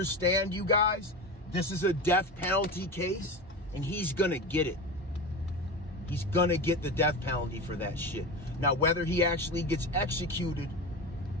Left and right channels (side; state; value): both; normal; correlation 0.25